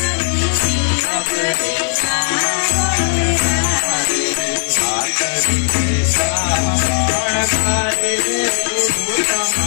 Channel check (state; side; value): silent; right; digital silence